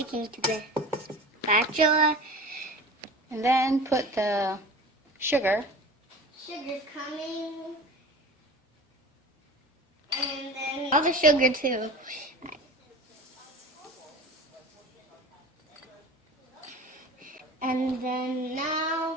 to the spatula. And then put the sugar. Sugar coming. And then all the sugar too. And then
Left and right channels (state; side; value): normal; both; correlation 0.36